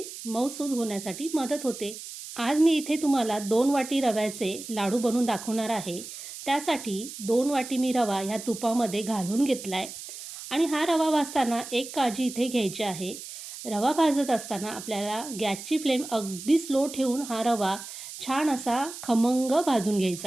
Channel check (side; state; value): right; noise; hiss, 11 dB below the sound